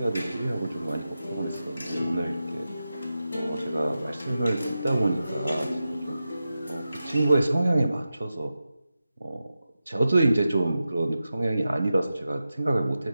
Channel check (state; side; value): inverted; both; correlation -0.92